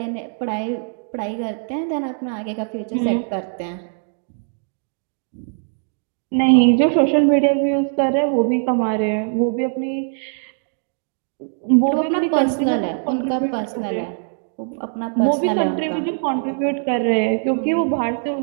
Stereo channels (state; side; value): silent; left; 65 dB below the other